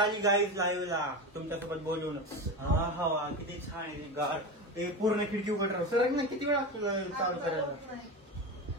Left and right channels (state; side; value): normal; both; correlation 0.23